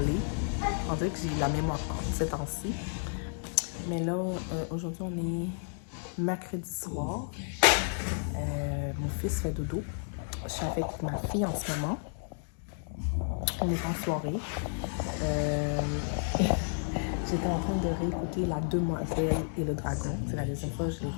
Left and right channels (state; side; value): silent; right; digital silence